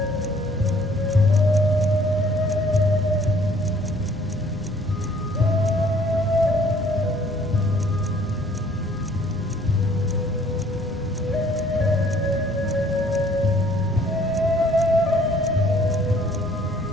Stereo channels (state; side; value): normal; both; correlation 0.59